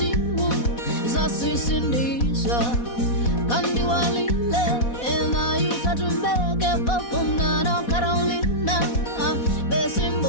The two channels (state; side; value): late; right; 4.1 ms